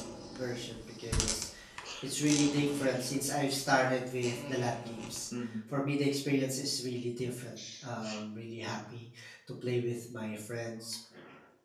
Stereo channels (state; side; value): identical; both; correlation 1.00